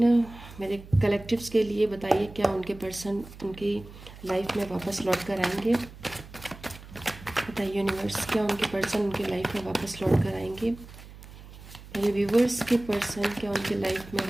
मेरे कलेक्टिव्स के लिए बताइए क्या उनके पर्सन उनकी लाइफ में वापस लौट कर आएंगे। बताइए यूनिवर्स, क्या उनके पर्सन उनकी लाइफ में वापस लौट कर आएंगे। मेरे व्यूवर्स के पर्सन क्या उनके लाइफ में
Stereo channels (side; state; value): right; noise; hum, 17 dB below the sound